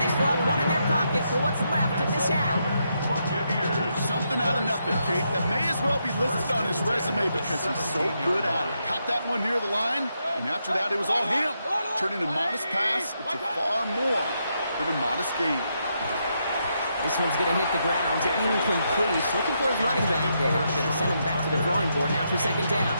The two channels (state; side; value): inverted; both; correlation -0.80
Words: still have one in their pocket for what's left of this half. Something out of nothing, Kate, that may as well be listed on his resume because he's so good at it. Caught that one near the line, and after that it was all him, turning a modest pass into far more than a modest gain. This one's going to hit the ground, incomplete. Looking for his running back there. Going to send him back to the drawing board now for 2nd down.